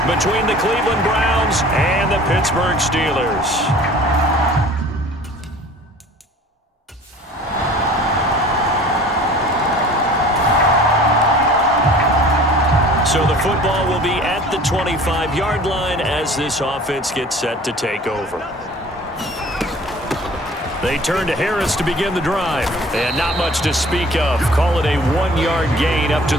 between the Cleveland Browns and the Pittsburgh Steelers. So the football will be at the 25-yard line as this offense gets set to take over. They turn to Harris to begin the drive. And not much to speak of. Call it a 1-yard gain up to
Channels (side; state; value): both; normal; correlation 0.47